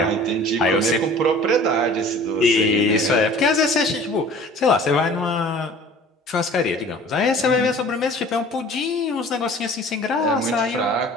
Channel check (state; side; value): normal; both; correlation 0.46